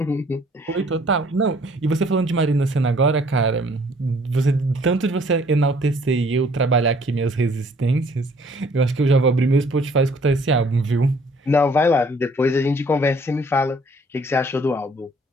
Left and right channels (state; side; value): normal; both; correlation 0.59